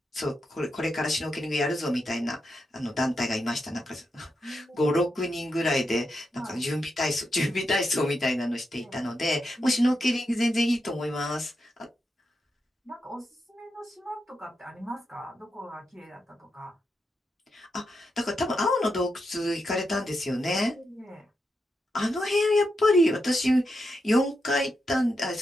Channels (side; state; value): both; normal; correlation 0.86